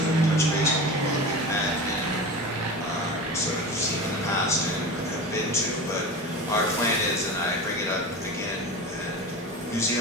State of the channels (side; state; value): both; normal; correlation 0.29